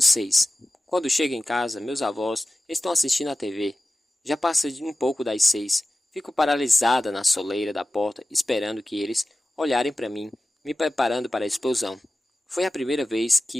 Quando chego em casa, meus avós estão assistindo a TV. Já passa de um pouco das 6. Fico paralisada na soleira da porta, esperando que eles olharem para mim, me preparando para a explosão. Foi a primeira vez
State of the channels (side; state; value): both; normal; correlation 0.95